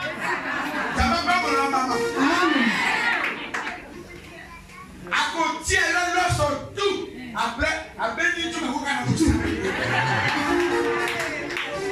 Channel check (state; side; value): identical; both; correlation 1.00